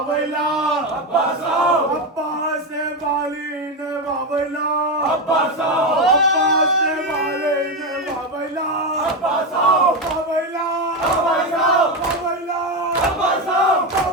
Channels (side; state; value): both; normal; correlation 0.12